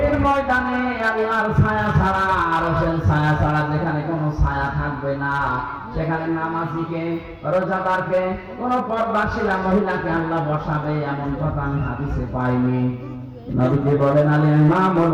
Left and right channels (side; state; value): both; identical; correlation 1.00